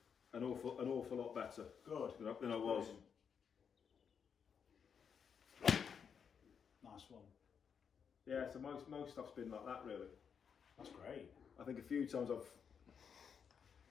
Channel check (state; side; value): quieter; right; 6.9 dB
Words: an awful lot better. Good. Than I was. Nice one. Yeah, so most stuff's been like that, really. That's great. I think a few times I've